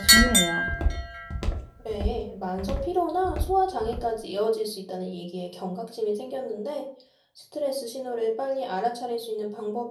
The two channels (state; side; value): identical; both; correlation 1.00